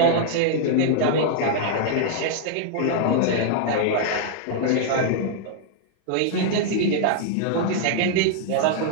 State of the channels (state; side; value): different; both; correlation -0.01